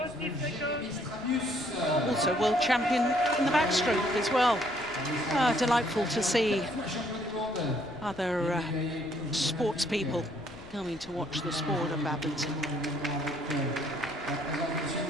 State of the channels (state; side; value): noise; left; rumble, 22 dB below the sound